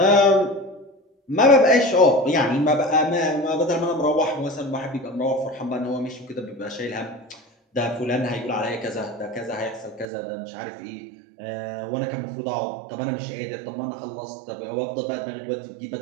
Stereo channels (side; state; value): left; drops out; at 10.1 s